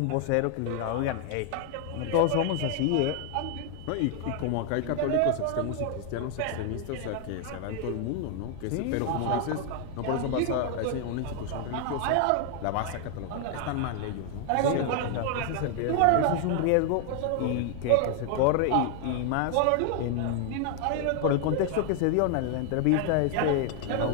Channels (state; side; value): different; both; correlation 0.00